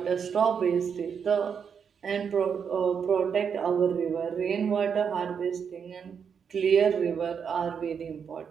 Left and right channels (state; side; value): quieter; left; 6.9 dB